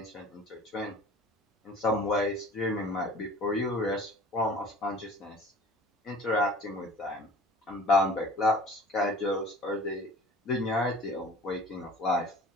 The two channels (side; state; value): both; normal; correlation 0.45